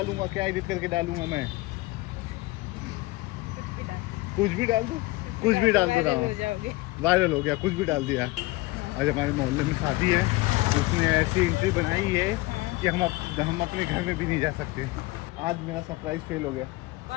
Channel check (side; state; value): right; quieter; 20.9 dB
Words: क्या एडिट करके डालूँगा मैं? कुछ भी डाल दूँ, कुछ भी डाल दे रहा हूँ, वायरल हो गया, कुछ भी डाल दिया। आज हमारे मोहल्ले में शादी है, उसने ऐसी एंट्री बनाई है कि हम अपने घर में भी नहीं जा सकते। आज मेरा सरप्राइज फेल हो गया।